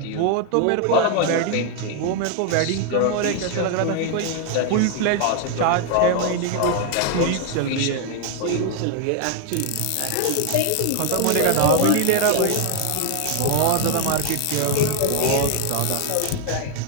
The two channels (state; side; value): different; both; correlation 0.01